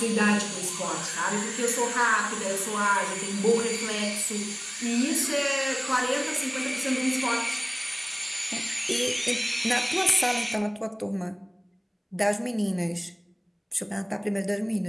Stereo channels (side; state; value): both; identical; correlation 1.00